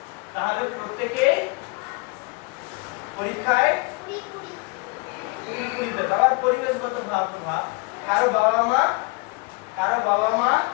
তাহলে প্রত্যেকে পরীক্ষায় 20 পেত। আবার পরিবেশগত ভাব, কারো বাবা মা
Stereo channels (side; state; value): right; quieter; 29.2 dB